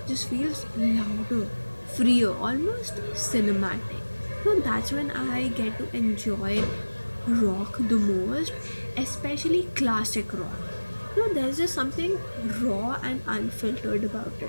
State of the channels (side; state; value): both; inverted; correlation -1.00